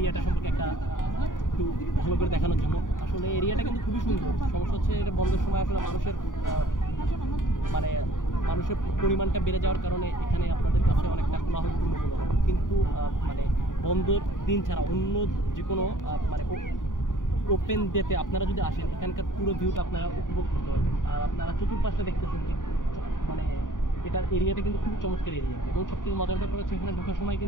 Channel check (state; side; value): late; right; 0.88 ms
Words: সম্পর্কে একটু ভালো করে দেখানোর জন্য। আসলে এরিয়াটা কিন্তু খুবই সুন্দর। সমস্যা হচ্ছে এটা বন্ধের সময় আসলে মানে মানুষের পরিমাণটা বেড়ে যাওয়ার কারণে এখানে আপনাদের কাছে অনেকটা কোলাহলপূর্ণ মনে হবে, কিন্তু মানে বন্ধের দিন ছাড়া অন্য যে কোনো মানে ওপেন ডেতে আপনারা যদি আসেন, এখানকার পুরো ভিউটা আপনারা উপভোগ করতে পারবেন। আর আপনারা চতুর্পাশটা দেখতেছেন যে মানে এটার এরিয়াটা কিন্তু খুব চমৎকার এরিয়া। এবং সবথেকে মজার ব্যাপার হচ্ছে এখানে ঢোকার সময়